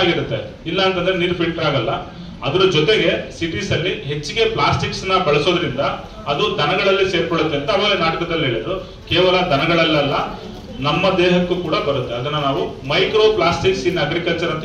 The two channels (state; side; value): identical; both; correlation 1.00